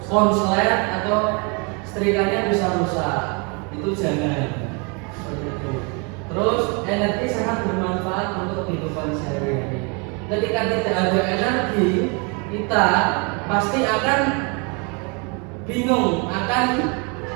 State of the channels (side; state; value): left; quieter; 32.9 dB